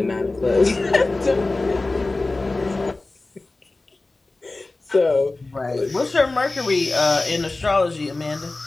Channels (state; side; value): quieter; right; 3.2 dB